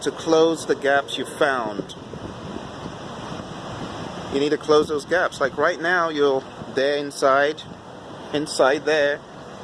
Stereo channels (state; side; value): identical; both; correlation 1.00